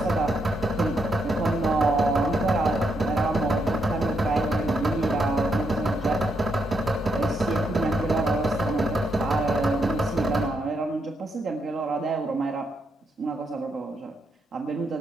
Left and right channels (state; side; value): normal; both; correlation 0.79